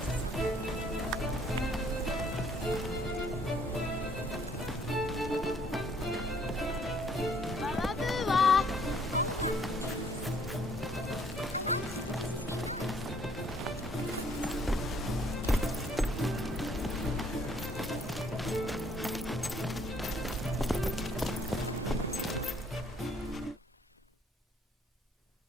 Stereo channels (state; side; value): normal; both; correlation 0.63